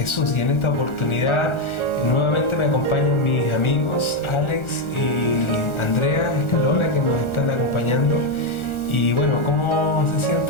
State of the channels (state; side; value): late; right; 1.4 ms